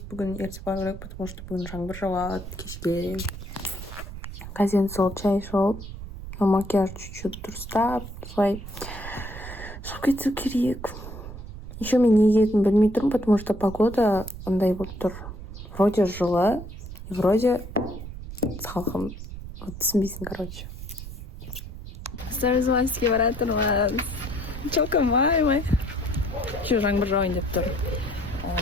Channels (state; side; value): noise; right; rumble, 11 dB below the sound